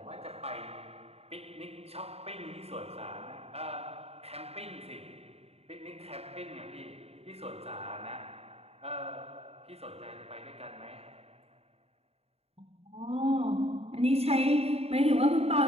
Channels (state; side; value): late; left; 0.30 ms